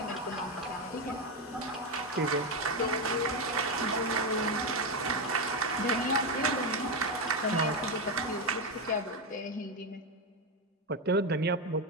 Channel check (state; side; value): normal; both; correlation 0.09